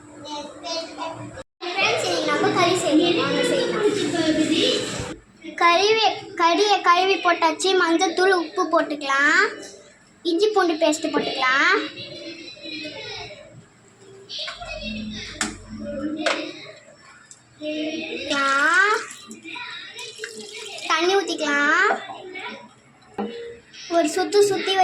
friends. இன்னைக்கு நம்ம கறி செய்யலாம். கறியை கழுவி போட்டாச்சு. மஞ்சத்தூள், உப்பு போட்டுக்கலாம். இஞ்சி பூண்டு பேஸ்ட்டு போட்டுக்கலாம். தண்ணி ஊற்றிக்கலாம். ஒரு சுற்றி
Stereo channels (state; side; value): identical; both; correlation 1.00